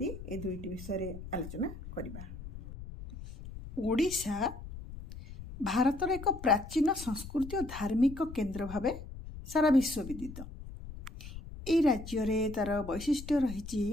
ए दुईटी विषय आलोचना करिबा। ओडिशा भारतर एक प्राचीन संस्कृति और धार्मिक केन्द्र भावे सारा विश्व विदित। ए राज्य रे तार वैशिष्ट्य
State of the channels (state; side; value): noise; left; rumble, 12 dB below the sound